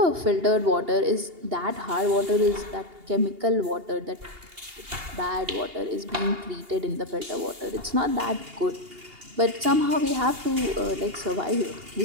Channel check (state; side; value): late; left; 2.8 ms